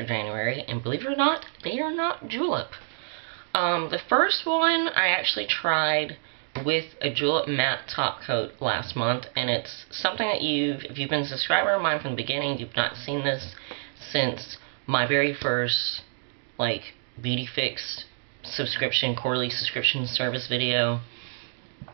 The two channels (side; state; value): left; silent; digital silence